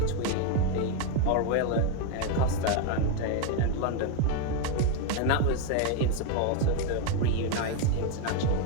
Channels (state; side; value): different; both; correlation 0.01